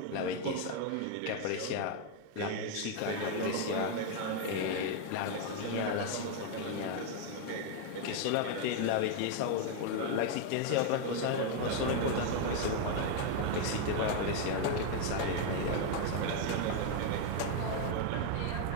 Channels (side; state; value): both; different; correlation 0.01